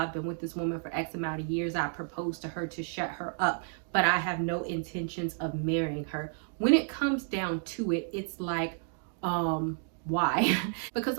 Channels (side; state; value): left; silent; 57 dB below the other